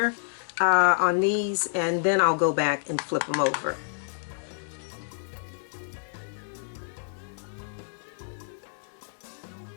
on these, and then I'll go back and flip them over.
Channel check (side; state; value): right; silent; digital silence